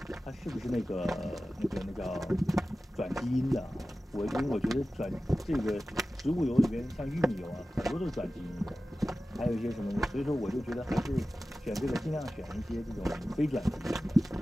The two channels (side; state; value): both; normal; correlation 0.95